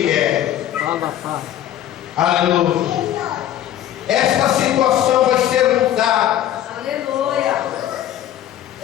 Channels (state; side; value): quieter; right; 11.9 dB